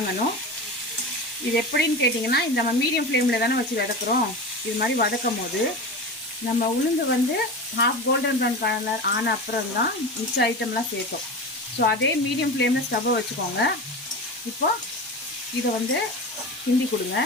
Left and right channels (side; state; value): both; normal; correlation 0.27